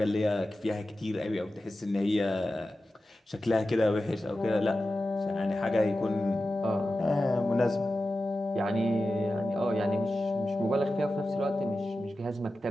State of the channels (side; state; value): both; normal; correlation 0.93